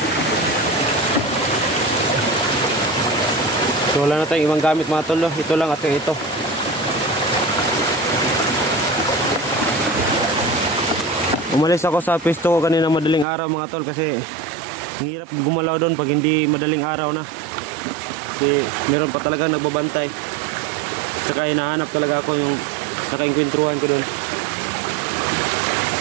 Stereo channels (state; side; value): drops out; left; at 13.2 s